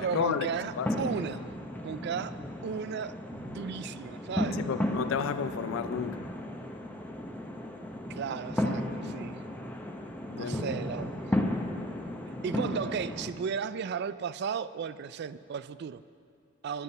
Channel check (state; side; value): normal; both; correlation 0.31